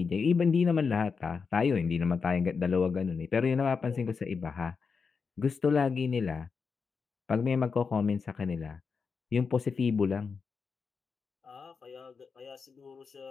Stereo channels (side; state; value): right; quieter; 5.4 dB